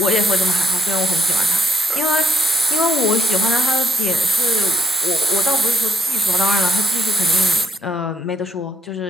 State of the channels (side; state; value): both; normal; correlation 0.72